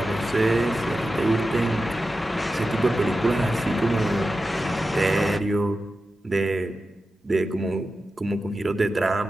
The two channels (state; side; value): normal; both; correlation 0.92